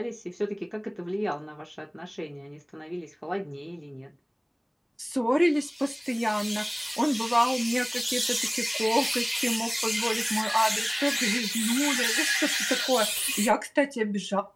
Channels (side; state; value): both; identical; correlation 1.00